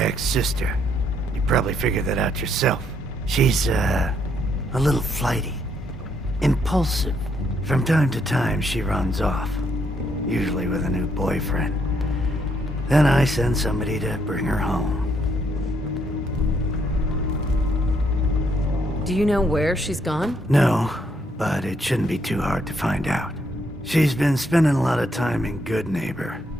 sister. You probably figured that out yourself. She's, a little flighty. Impulsive. From time to time, she runs off. Usually with a new boyfriend. Then I send somebody to bring her home. Do you know where she's gone? No, but it shouldn't be too hard to find out. She's been spending a lot of time in Good Neighbor.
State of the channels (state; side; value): normal; both; correlation 0.73